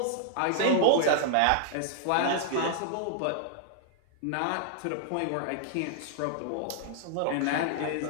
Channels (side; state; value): both; different; correlation -0.01